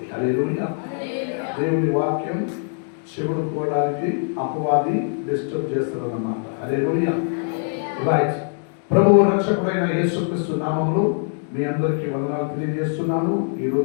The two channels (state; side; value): silent; right; 64 dB below the other